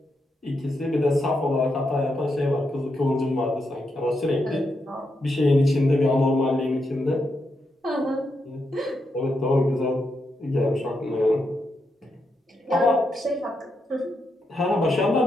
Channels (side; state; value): both; normal; correlation 0.83